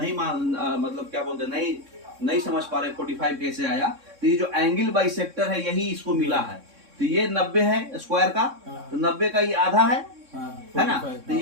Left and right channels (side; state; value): left; late; 3.6 ms